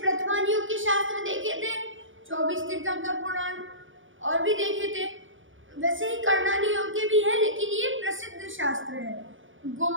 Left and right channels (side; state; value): left; late; 0.57 ms